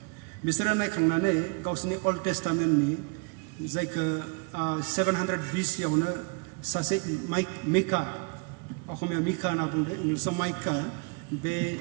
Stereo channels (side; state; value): left; quieter; 32.4 dB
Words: बिसोरो नायखांनानै गावसोरनि अल्ड टेस्टामेन्टनि जायखौ 700 BC-आवनो सासे मिका असमिया मिका होनना बुंदों इंलिसाव माइका बे